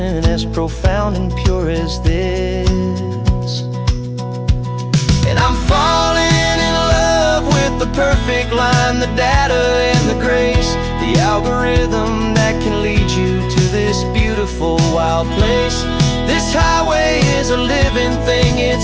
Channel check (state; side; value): identical; both; correlation 1.00